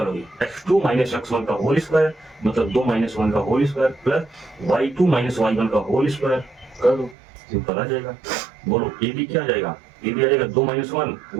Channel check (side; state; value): left; drops out; at 7.2 s